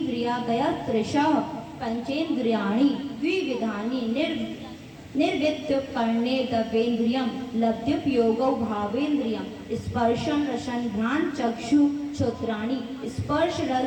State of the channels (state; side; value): identical; both; correlation 1.00